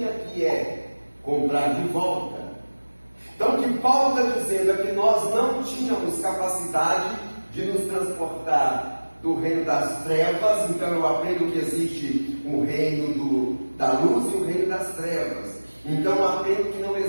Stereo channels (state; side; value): inverted; both; correlation -1.00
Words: que é comprar de volta. Então o que Paulo está dizendo é que nós não tínhamos capacidade de nos transportar do reino das trevas. Então eu aprendo que existe o reino da luz e o reino das trevas. Então eu aprendo que não